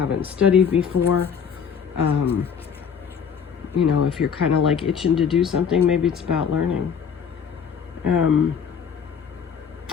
studied before. You know, if you're kind of like itching to do something, maybe it's about learning.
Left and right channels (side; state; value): right; quieter; 7.0 dB